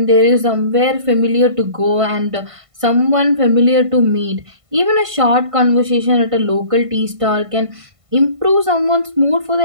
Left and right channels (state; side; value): late; left; 1.5 ms